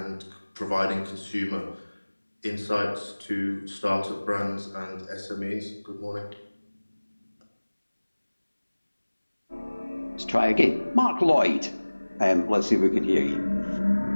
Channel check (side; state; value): both; inverted; correlation -1.00